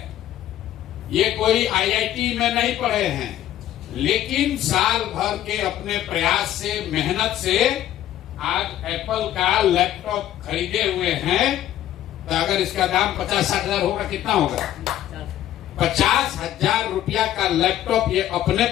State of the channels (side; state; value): right; quieter; 12.4 dB